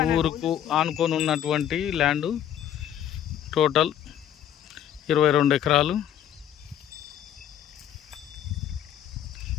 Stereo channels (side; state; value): right; quieter; 10.4 dB